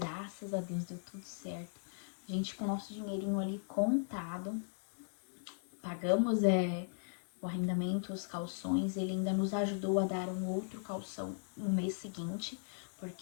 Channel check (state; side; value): silent; right; digital silence